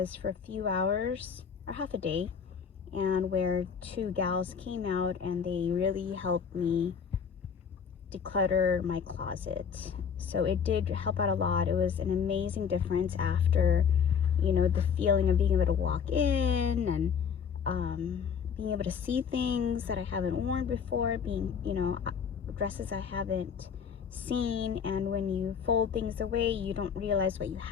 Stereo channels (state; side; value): quieter; right; 6.9 dB